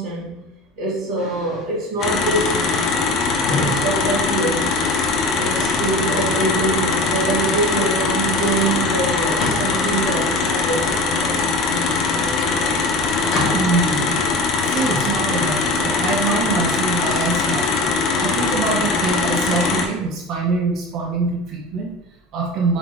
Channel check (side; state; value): both; normal; correlation 0.33